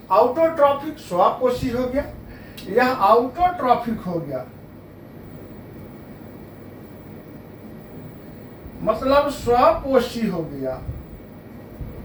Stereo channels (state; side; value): identical; both; correlation 1.00